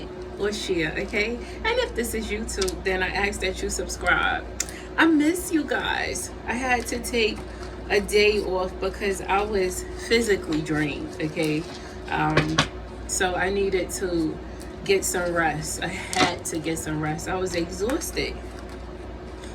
or share, okay? And if this is YouTube, then I ask that you subscribe. I miss you guys. I had to take a day off because I was physically drained, okay? So I needed to get some rest. I had to get some rest. I was exhausted.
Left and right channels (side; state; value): both; identical; correlation 1.00